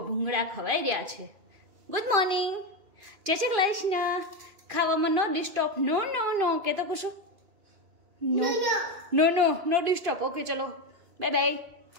ભૂંગળા ખવાઈ રહ્યા છે. ગુડ મોર્નિંગ, જય શ્રી કૃષ્ણ. ખાવામાં નો ડિસ્ટર્બ. નો નો નો કે તો કશું નો નો નો નો ડિસ્ટર્બ. ઓકે ચલો બાય બાય.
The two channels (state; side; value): late; left; 2.5 ms